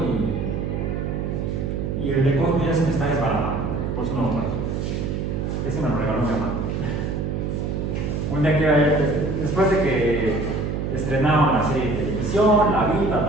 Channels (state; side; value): noise; right; hum, 2 dB below the sound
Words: y el de Cosmo ya se me está desbaratando. Por eso no lo traje. Ese me lo regaló mi mamá. Un día que, después de que estrenaron la serie de televisión, la vi,